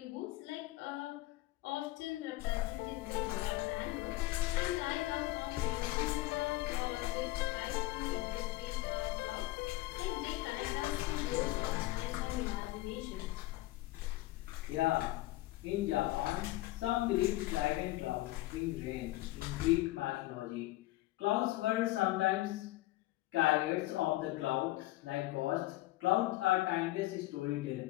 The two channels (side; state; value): right; quieter; 17.9 dB